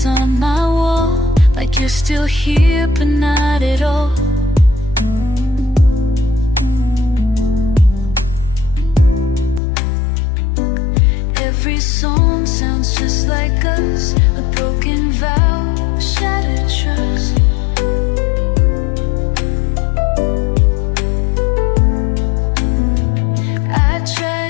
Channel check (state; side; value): drops out; right; at 9.6 s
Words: on my wall, like you're still here but not at all. Every song sounds just like us, a broken vow, shattered trust. I